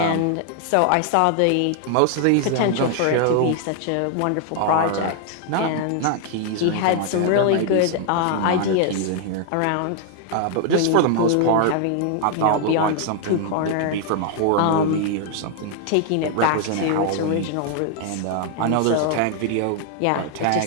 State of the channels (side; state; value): both; different; correlation 0.00